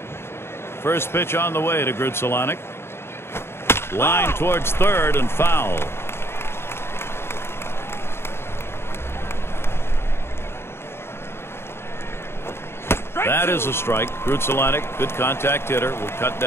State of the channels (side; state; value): right; late; 0.12 ms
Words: First pitch on the way to Grudzielanek. Line towards third and foul. That is a strike. Grudzielanek, good contact hitter, will cut